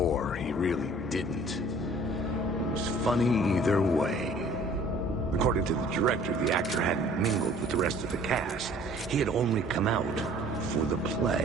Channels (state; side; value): normal; both; correlation 0.53